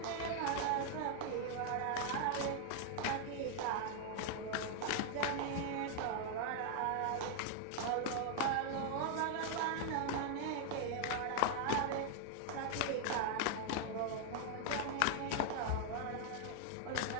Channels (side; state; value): both; different; correlation 0.00